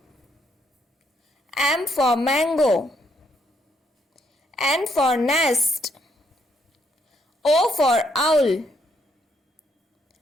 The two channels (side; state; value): both; normal; correlation 0.73